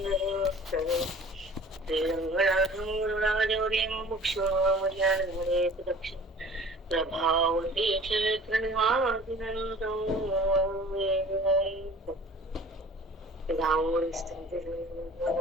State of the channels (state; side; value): normal; both; correlation 0.46